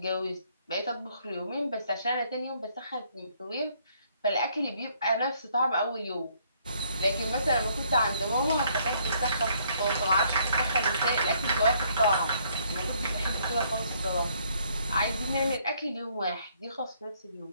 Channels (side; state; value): both; inverted; correlation -0.67